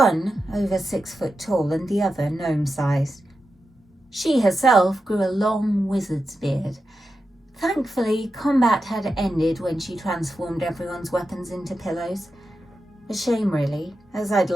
over 6 foot tall and the other gnome-sized. She herself grew a long wizard's beard. Thankfully, combat had ended when she transformed everyone's weapons into pillows. A shame, really, as I'd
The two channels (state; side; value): normal; both; correlation 0.90